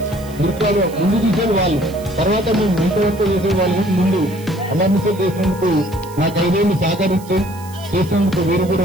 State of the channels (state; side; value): noise; right; hiss, 21 dB below the sound